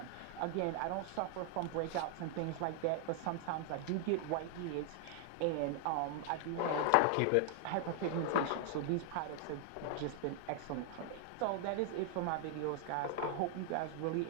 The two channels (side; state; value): both; different; correlation 0.00